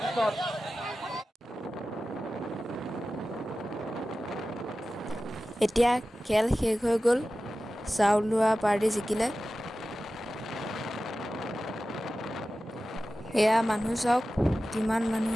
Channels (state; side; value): normal; both; correlation 0.95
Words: এতিয়া খেল শেষ হৈ গ'ল চাউল লোৱা পাৰ্টি জিকিলে এয়া মানুহ চাওক কিমান মানুহ